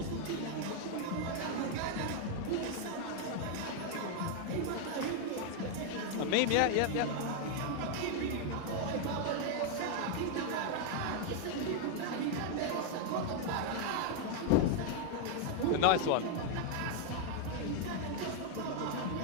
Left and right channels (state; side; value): different; both; correlation 0.00